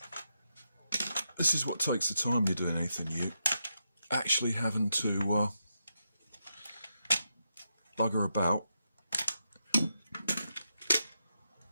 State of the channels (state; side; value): inverted; both; correlation -0.84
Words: This is what takes the time you're doing anything new. Actually having to bugger about.